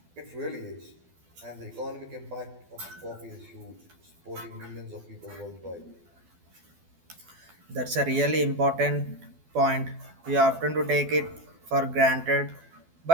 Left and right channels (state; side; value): late; left; 12 ms